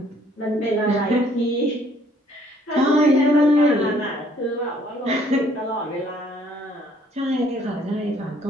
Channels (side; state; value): both; normal; correlation 0.62